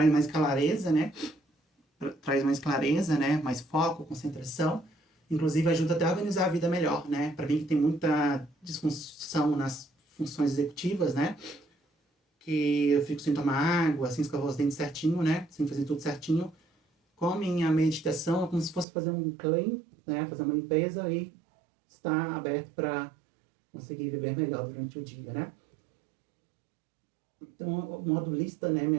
mais clareza, né? Traz mais clareza, né? Mais foco, concentração. Inclusive ajuda até a organizar a vida melhor, né? Para mim que tem muita disfunção nas funções executivas, né? Que eu fico sem tomar água, sem escovar os dentes certinho, né? Sem fazer tudo certinho. Com a minha meditação é como se fosse fazer um clean, né? Fazer uma limpeza e estar aberto para conseguir viver melhor durante o dia, né? Então, o modo lista, né, me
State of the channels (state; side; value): drops out; left; at 18.9 s